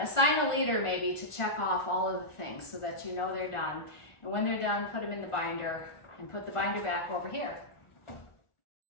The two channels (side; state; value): right; late; 1.4 ms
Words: a leader maybe to check off all of the things so that you know they're done. And when they're done, put them in the binder and put the binder back over here.